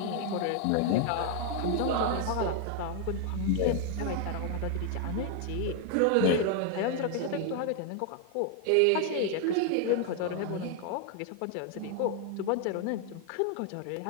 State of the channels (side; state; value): both; different; correlation 0.00